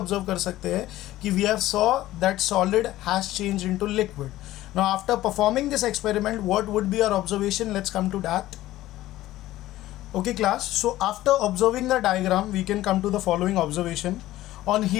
कर सकते हैं कि we have saw that solid has changed into liquid. Now after performing this experiment, what would be our observation? Let's come to that. Okay class, so after observing the diagram, we can come to the following observation. On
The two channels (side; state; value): right; quieter; 15.4 dB